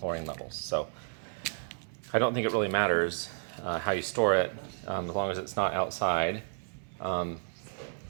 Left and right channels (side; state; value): left; silent; 56 dB below the other